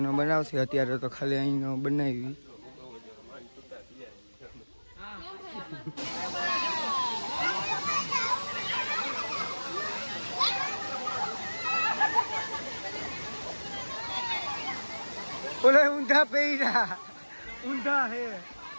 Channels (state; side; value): inverted; both; correlation -1.00